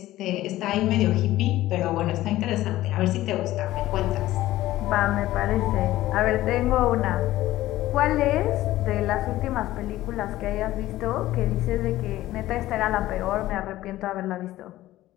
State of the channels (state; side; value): quieter; right; 15.5 dB